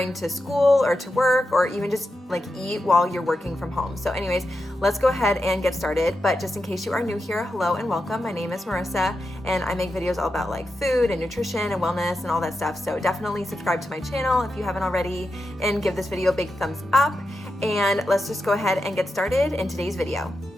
to school or to work, or even just like eat while you're working from home. So anyways, let's go ahead and get started. But just in case you are new here, hello and welcome. My name is Marissa, and I make videos all about like food and nutrition and wellness and all that stuff. So definitely subscribe to my channel if you haven't already, and give this video a big thumbs up. And let's just go ahead and get started in today's video.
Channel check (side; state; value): both; normal; correlation 0.88